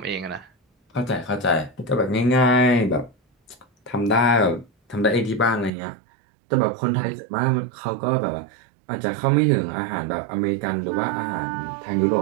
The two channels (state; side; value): drops out; left; at 5.7 s